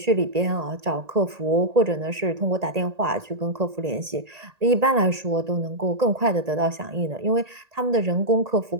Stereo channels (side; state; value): left; late; 1.8 ms